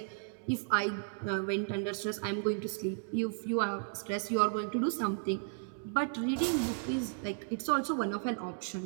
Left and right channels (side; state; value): left; silent; 55 dB below the other